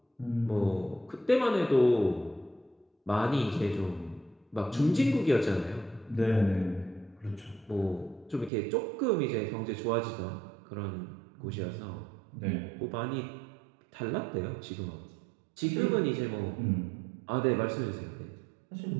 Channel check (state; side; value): drops out; left; at 8.5 s